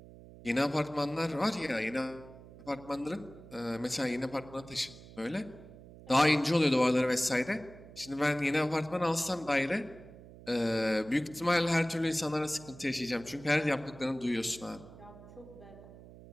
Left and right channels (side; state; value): right; noise; hum, 18 dB below the sound